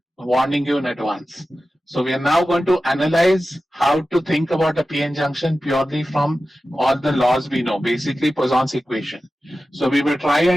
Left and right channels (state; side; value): normal; both; correlation 0.94